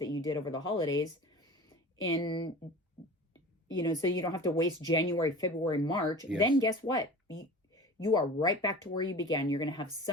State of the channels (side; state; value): both; normal; correlation 0.37